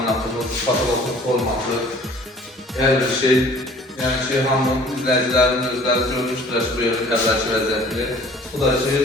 patologumuz olmalı. Her bir şey, yani hamının izleyicilerinin özləri görmüşdür bu yönü əvvəlki vəziyyətini. Bu da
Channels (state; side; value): normal; both; correlation 0.51